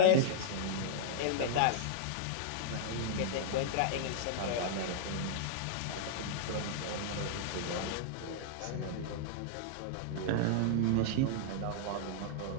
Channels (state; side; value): different; both; correlation -0.01